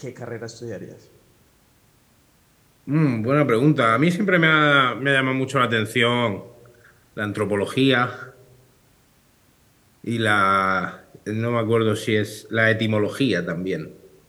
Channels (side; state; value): both; identical; correlation 1.00